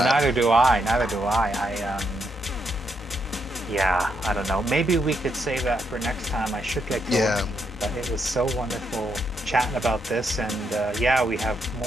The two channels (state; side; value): normal; both; correlation 0.79